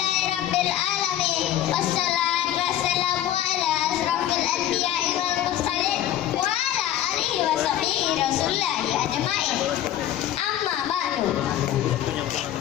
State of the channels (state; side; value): quieter; right; 11.9 dB